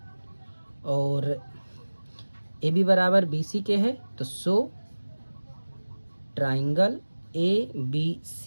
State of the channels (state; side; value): inverted; both; correlation -1.00